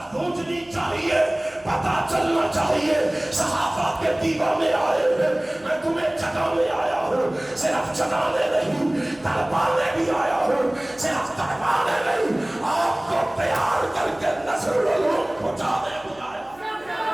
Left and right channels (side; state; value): right; noise; hum, 28 dB below the sound